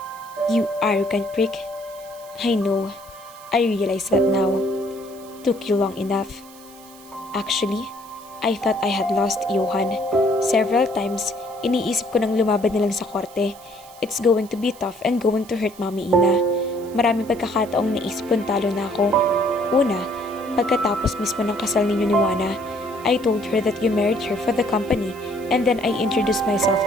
You arrogant prick. I know. I realize that now. Took you long enough. Actually, I thought I had lost Yohan. Several times, iniisip ko nang lumaban na lang sa korte. It's going to be tough and going to hurt Mami Ina. Maraming pagkakataong naisip kong talo na ako. Una, pagkatapos mismo ng kasal ninyo ni Wana, I told her that you married her for the company and then I introduced myself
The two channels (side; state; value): right; noise; hiss, 22 dB below the sound